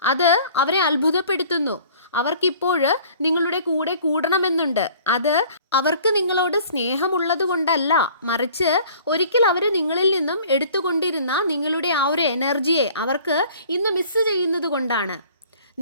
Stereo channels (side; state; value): both; inverted; correlation -0.51